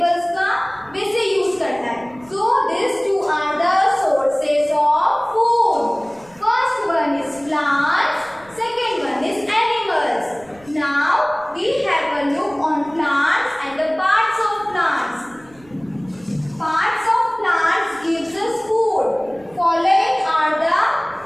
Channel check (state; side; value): noise; right; rumble, 26 dB below the sound